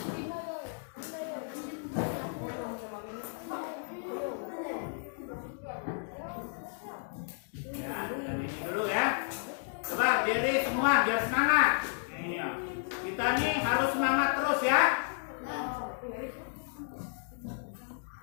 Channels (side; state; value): right; silent; digital silence